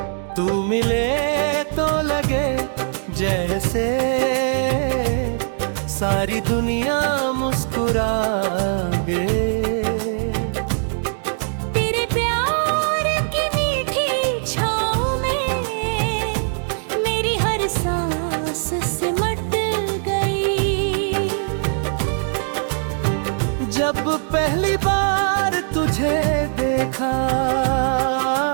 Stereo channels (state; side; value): silent; left; digital silence